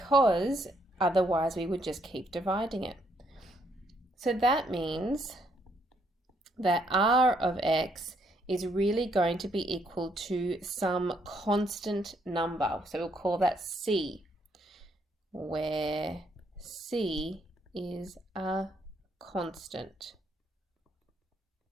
otherwise we would just keep dividing it. So that means that r of x is really going to be equal to some constant number, so we'll call that c, where c is a constant.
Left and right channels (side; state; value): both; normal; correlation 0.72